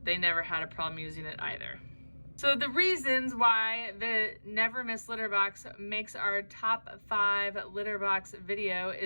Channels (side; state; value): both; inverted; correlation -1.00